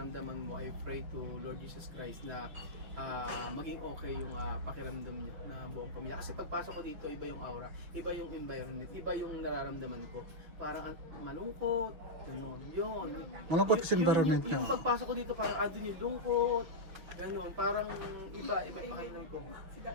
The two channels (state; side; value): late; left; 6.1 ms